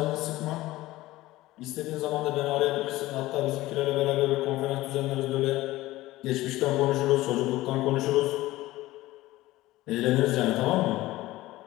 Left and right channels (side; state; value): right; quieter; 17.5 dB